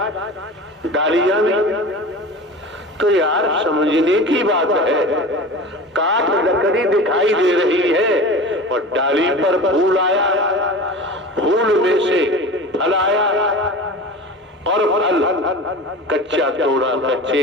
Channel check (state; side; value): normal; both; correlation 0.34